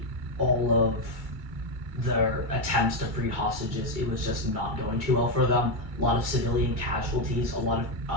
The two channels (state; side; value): late; left; 2.3 ms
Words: all of their attempts to free hostages, it was just not going too well for them. A lot of civilian casualties, a lot